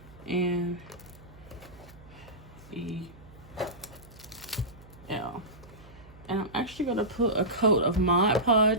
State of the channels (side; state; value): right; noise; hum, 21 dB below the sound